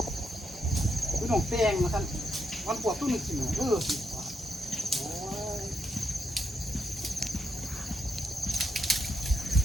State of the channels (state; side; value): normal; both; correlation 0.80